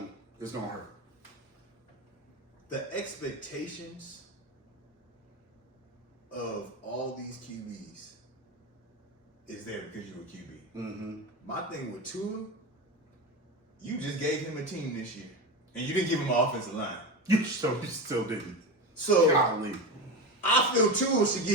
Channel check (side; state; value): both; normal; correlation 0.21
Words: hurt. The expectations of all these QBs is there because you're a QB. Mm-hmm. My thing with Tua, you just gave him a team this year, and you didn't give him an offensive line. You still didn't. So golly. I feel Tua should